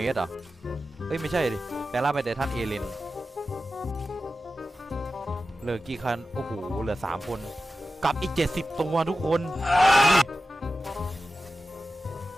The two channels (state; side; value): normal; both; correlation 0.93